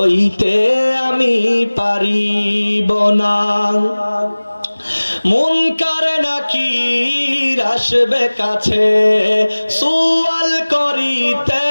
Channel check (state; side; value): inverted; both; correlation -1.00